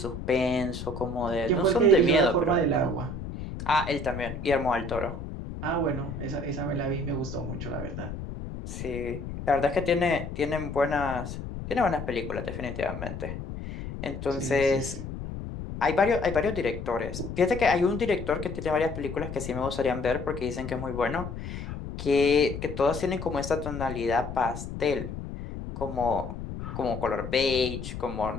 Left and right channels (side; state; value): left; noise; rumble, 8 dB below the sound